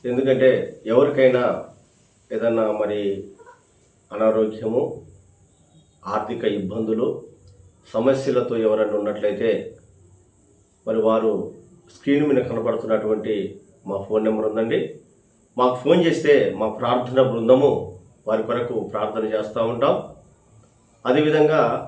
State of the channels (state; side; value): identical; both; correlation 1.00